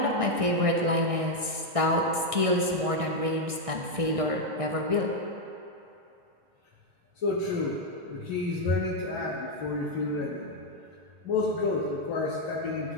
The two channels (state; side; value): late; left; 1.6 ms